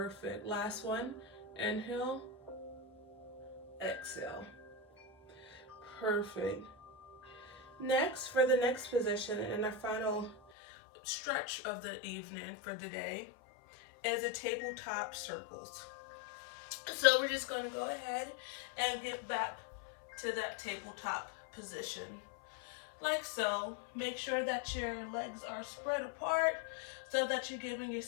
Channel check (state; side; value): drops out; right; at 10.4 s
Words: Last one. Inhale, exhale. Perfect. Next, for the next position and our final stretch of the evening for the day is a tabletop circles. So we're just going to go ahead and get back to that tabletop position like so. Make sure that your legs are spread apart so that you're giving your